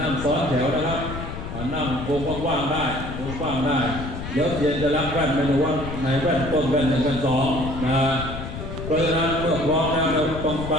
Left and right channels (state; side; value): noise; left; rumble, 8 dB below the sound